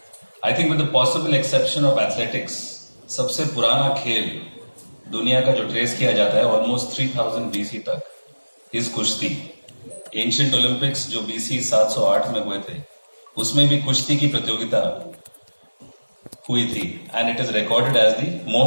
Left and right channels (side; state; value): both; inverted; correlation -1.00